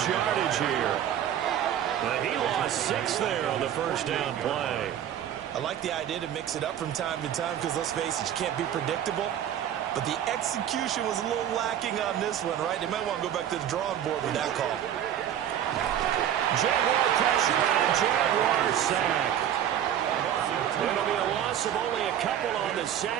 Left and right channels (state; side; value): quieter; left; 10.3 dB